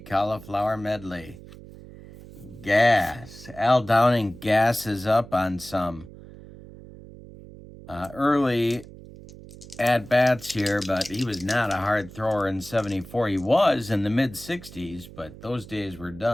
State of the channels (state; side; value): noise; right; hum, 17 dB below the sound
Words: medley. Gas. Al Downing gasses up on some early at-bats here, but he was not a hard thrower in 74. He was in the mid-60s, but those days were